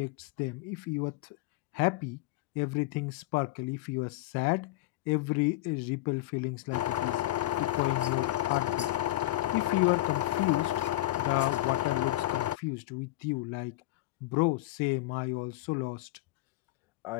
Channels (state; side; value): quieter; right; 17.2 dB